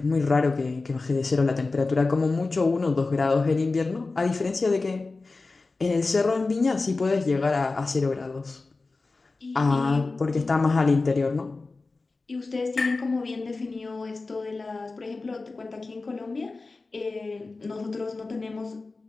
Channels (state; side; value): quieter; right; 3.7 dB